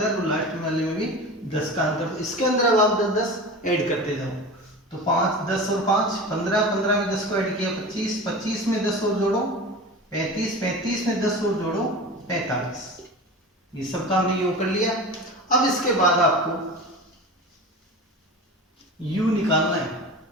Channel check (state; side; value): normal; both; correlation 0.32